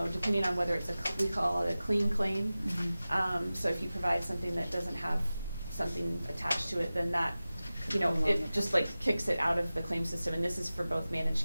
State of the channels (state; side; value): inverted; both; correlation -0.96